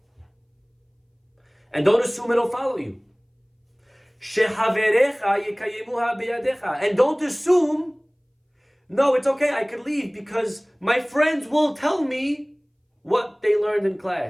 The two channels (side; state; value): both; identical; correlation 1.00